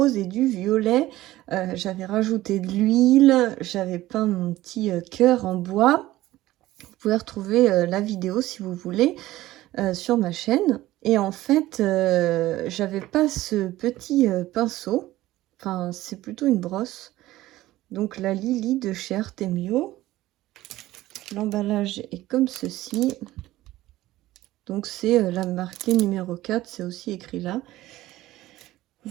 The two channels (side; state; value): left; quieter; 16.2 dB